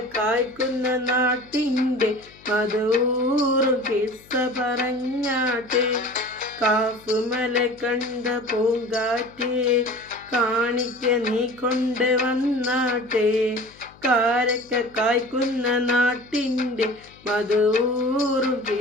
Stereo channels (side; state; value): left; noise; hum, 26 dB below the sound